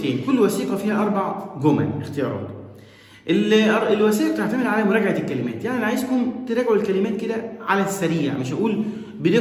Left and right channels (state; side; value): identical; both; correlation 1.00